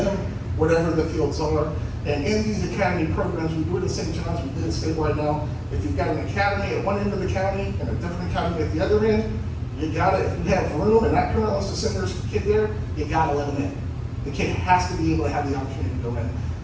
whatever the fields are. And in these academy programs, we do it at St. John's, we do it statewide now. If you've got an academy at one end of the county and a different academy at the other end, you gotta, if you have room and that parent wants to send their kid there, you gotta let them in. The kid has to be able to have the opportunity to go in.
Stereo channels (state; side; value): identical; both; correlation 1.00